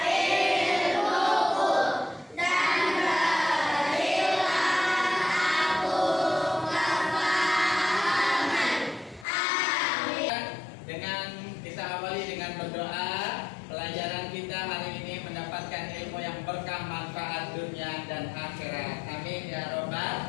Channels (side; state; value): right; drops out; at 9.2 s